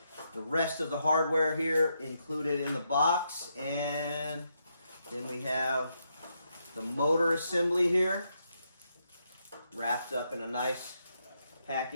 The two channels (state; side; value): inverted; both; correlation -0.80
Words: the rest of the hardware here included in the box. And then we have the motor assembly here, wrapped up in a nice